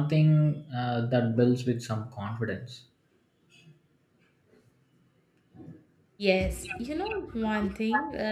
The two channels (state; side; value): identical; both; correlation 1.00